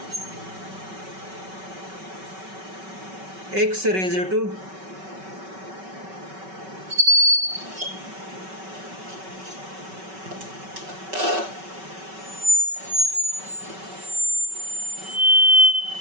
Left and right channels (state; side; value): late; left; 5.3 ms